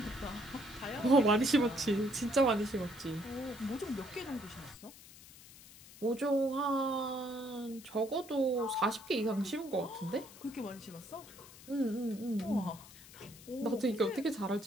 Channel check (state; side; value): noise; left; hiss, 19 dB below the sound